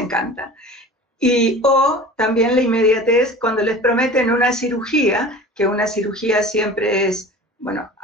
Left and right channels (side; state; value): both; normal; correlation 0.39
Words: O también la inmediatez cuando les prometen una cirugía, que una cirugía siempre es, bueno,